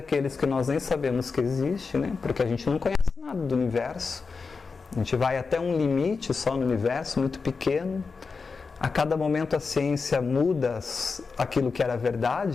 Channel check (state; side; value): quieter; right; 4.7 dB